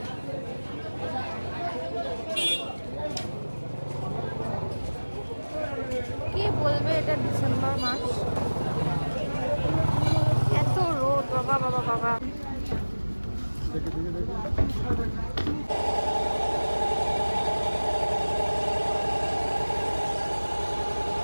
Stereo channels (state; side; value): inverted; both; correlation -1.00